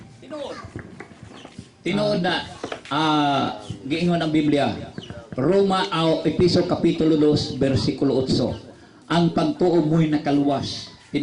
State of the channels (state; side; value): identical; both; correlation 1.00